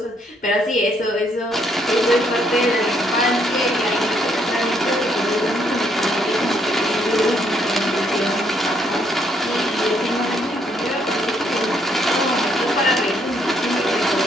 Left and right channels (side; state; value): both; normal; correlation 0.71